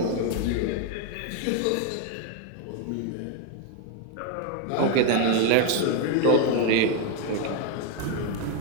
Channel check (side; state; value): both; different; correlation 0.01